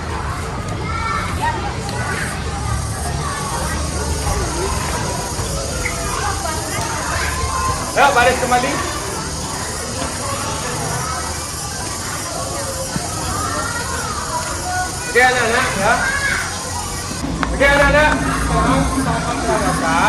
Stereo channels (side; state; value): both; identical; correlation 1.00